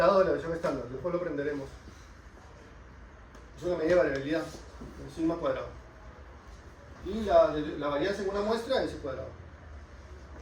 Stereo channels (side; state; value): both; identical; correlation 1.00